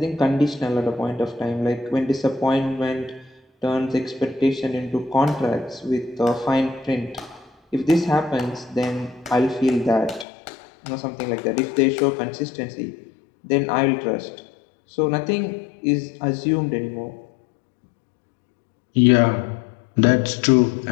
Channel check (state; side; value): drops out; right; at 10.2 s